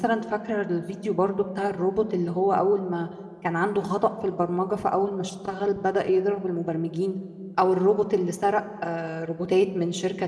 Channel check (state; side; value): identical; both; correlation 1.00